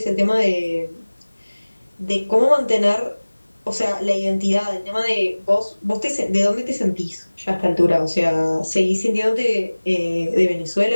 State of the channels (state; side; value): inverted; both; correlation -1.00